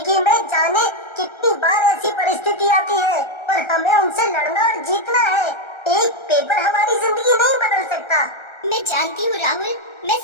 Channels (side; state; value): right; late; 1.3 ms